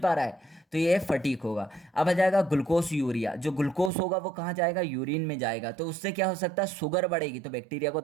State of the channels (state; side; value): drops out; left; at 3.9 s